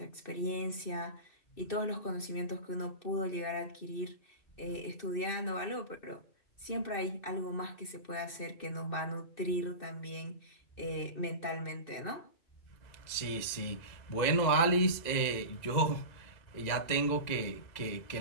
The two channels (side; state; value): right; late; 2.0 ms